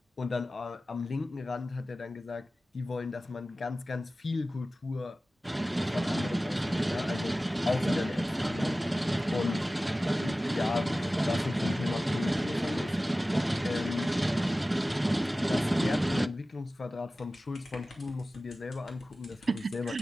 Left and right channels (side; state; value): both; normal; correlation 0.96